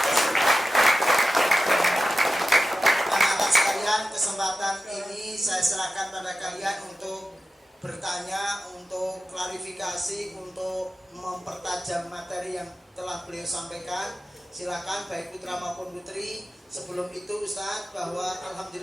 Anak-anak sekalian, kesempatan ini saya serahkan pada kalian untuk bertanya, untuk klarifikasi, untuk mempertajam materi yang telah beliau sampaikan. Silakan baik putra maupun putri. Sebelum itu Ustadz, bahwa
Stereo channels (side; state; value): both; normal; correlation 0.93